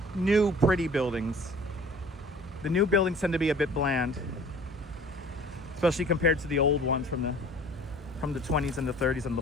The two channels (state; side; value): normal; both; correlation 0.48